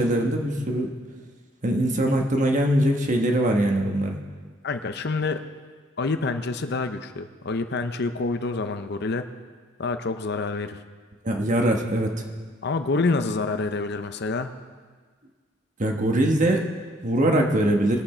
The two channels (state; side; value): normal; both; correlation 0.62